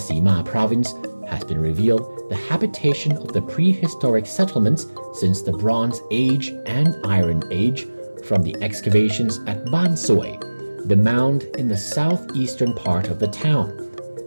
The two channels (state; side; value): inverted; both; correlation -1.00